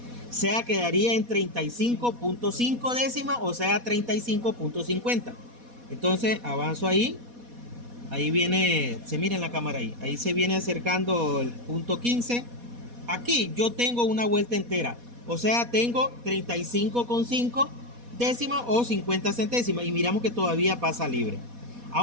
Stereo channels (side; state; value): left; late; 4.2 ms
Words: O sea, quedaría en 35.5 décimas, o sea, 35.50. Entonces, avanzo ahí. Ahí viene, se mira en la cámara ahí. Ahí se viene acercando el punto 15. Aquí yo tengo una vuelta entera. O sea, tengo 35.5 décimas o 50 centésimas. Y miramos que todavía pasa libre.